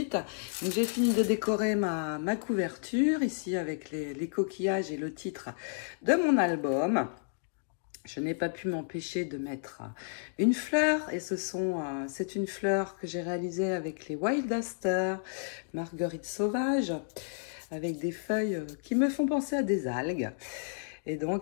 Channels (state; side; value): silent; right; digital silence